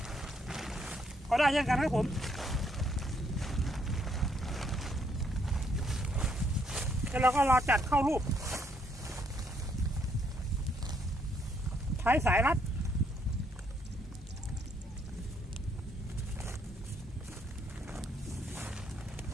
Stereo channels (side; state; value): both; normal; correlation 0.71